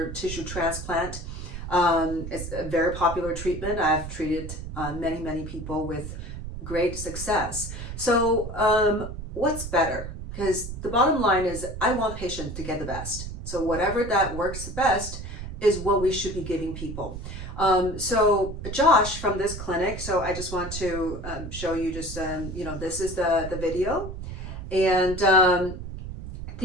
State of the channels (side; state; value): right; noise; rumble, 8 dB below the sound